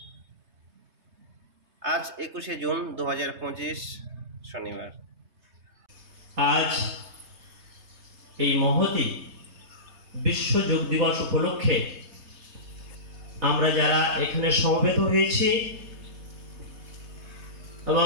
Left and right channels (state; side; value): late; left; 3.3 ms